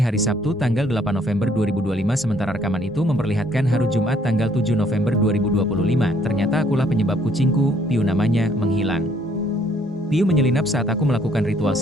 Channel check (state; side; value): normal; both; correlation 0.64